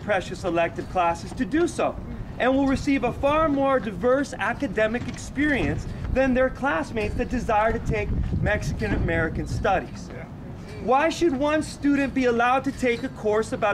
elective classes to do so, and will receive a far more diverse academic experience than their classmates that desire to take Mexican American studies. Why should one student be allowed to take a course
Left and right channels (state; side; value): identical; both; correlation 1.00